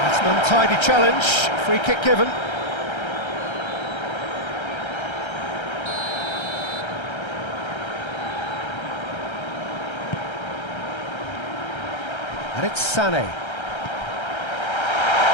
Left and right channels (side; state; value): right; late; 1.3 ms